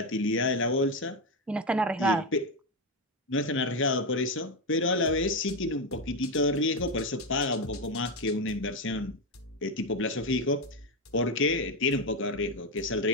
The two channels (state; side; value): normal; both; correlation 0.10